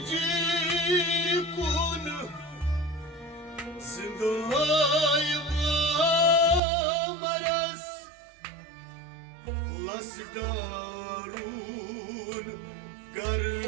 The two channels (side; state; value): left; drops out; at 6.6 s